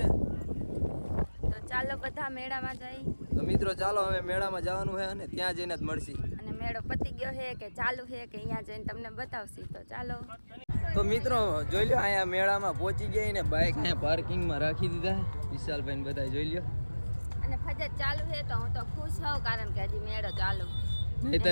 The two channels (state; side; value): inverted; both; correlation -1.00